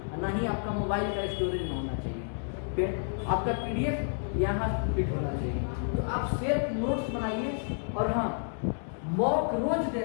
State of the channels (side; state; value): right; silent; digital silence